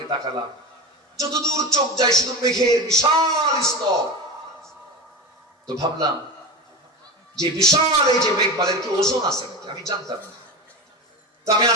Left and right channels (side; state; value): both; normal; correlation 0.25